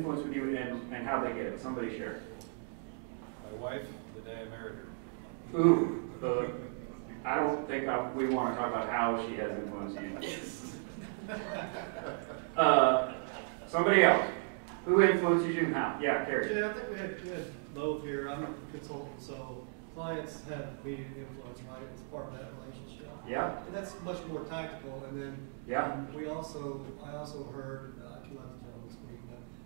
with you and how they get it? Somebody share. My wife, the day I married her. Ooh, I don't think we want to talk about how she has influenced you. Somebody else. Who influences you and how? Yeah, Carrie. Yeah, I think we had both here. I'm a consultant, so clients have immediate influence, right? It's part of that relationship. Yeah. And that's much more tactical. And then Yeah. I also heard, I can let the gentleman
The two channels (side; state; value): left; silent; 54 dB below the other